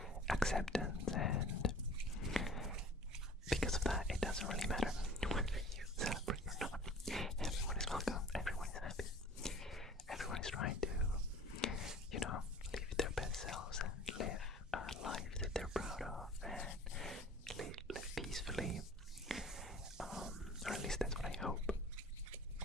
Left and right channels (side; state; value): both; normal; correlation 0.47